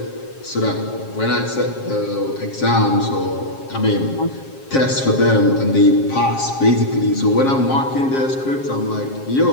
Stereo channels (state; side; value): late; right; 7.4 ms